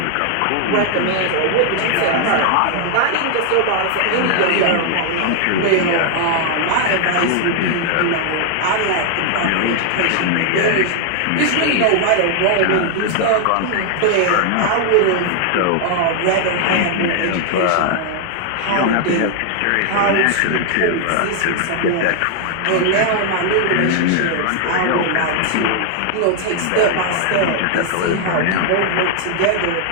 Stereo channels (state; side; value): different; both; correlation 0.00